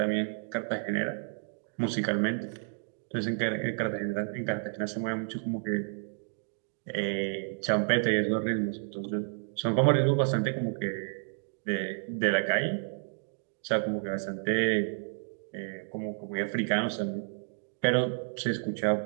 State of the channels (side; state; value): left; silent; 56 dB below the other